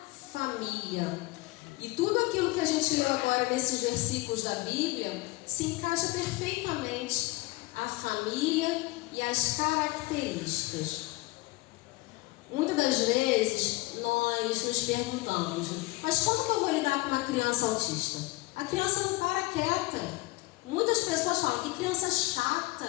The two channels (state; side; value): quieter; right; 21.8 dB